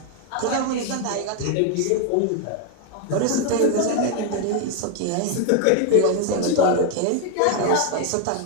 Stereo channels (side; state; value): both; different; correlation 0.00